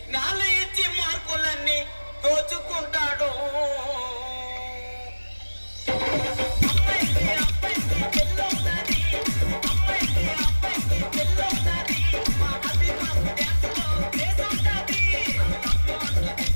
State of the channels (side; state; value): both; inverted; correlation -1.00